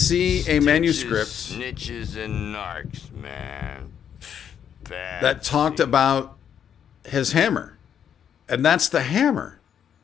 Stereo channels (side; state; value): right; quieter; 8.7 dB